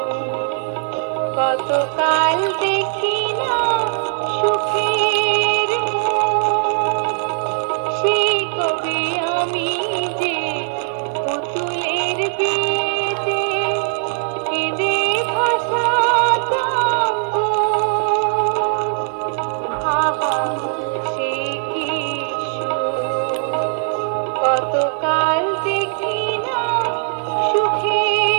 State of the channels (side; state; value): left; silent; digital silence